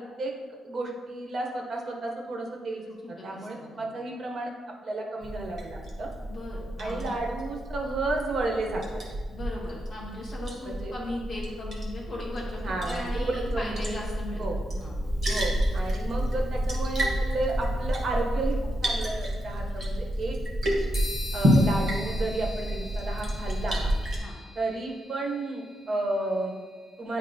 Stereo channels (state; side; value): normal; both; correlation 0.84